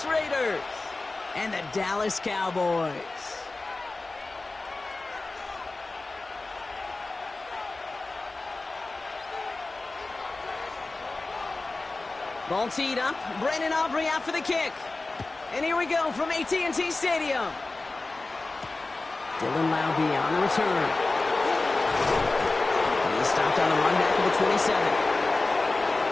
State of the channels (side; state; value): right; quieter; 3.3 dB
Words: Raiders and the Dallas Cowboys. Ball teed up. Brandon Aubrey out for the kick. And here we go from AT&T Stadium. Dylan Laube on the return. He's stopped on the run back of the 27.